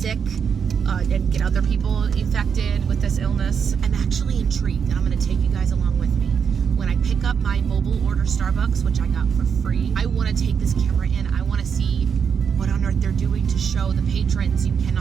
and get other people infected with this illness. I'm actually intrigued, and I'm going to take you guys along with me. When I pick up my mobile order Starbucks, which I got for free, I want to take this camera in. I want to see what on earth they're doing to show the patrons you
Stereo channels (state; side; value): quieter; left; 6.8 dB